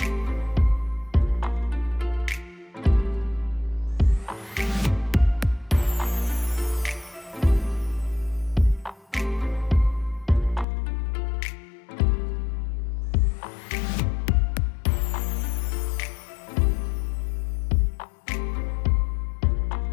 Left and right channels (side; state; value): right; drops out; at 10.7 s